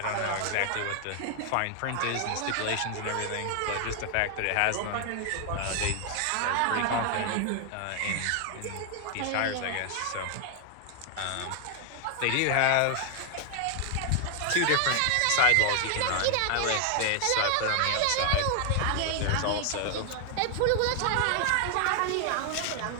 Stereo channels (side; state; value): both; different; correlation 0.00